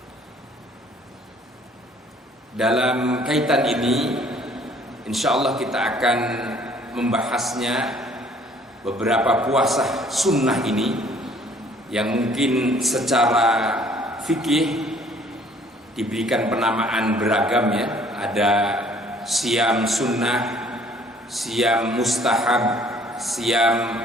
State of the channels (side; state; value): both; normal; correlation 0.58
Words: Dalam kaitan ini, insya Allah kita akan membahasnya beberapa puasa sunnah ini yang mungkin secara fikih diberikan penamaan beragam ya. Ada siam sunnah, siam mustahab, siam